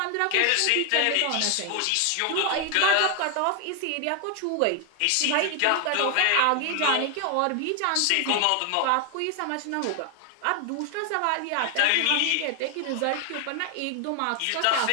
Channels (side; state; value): both; different; correlation 0.00